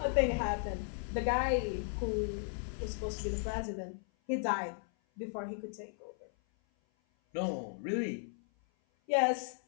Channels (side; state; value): right; silent; 54 dB below the other